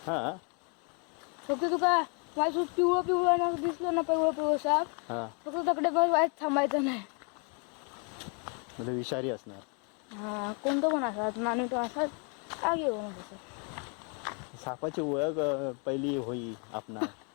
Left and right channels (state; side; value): quieter; right; 37.1 dB